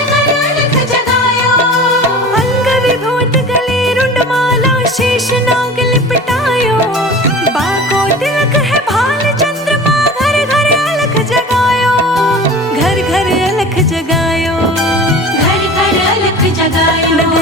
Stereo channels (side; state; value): both; normal; correlation 0.38